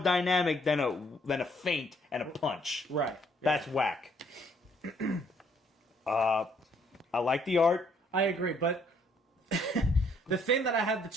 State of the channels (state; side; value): normal; both; correlation 0.66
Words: than a feint and a punch. Right. That's whack. I like the art. I agree, but the thing that I had to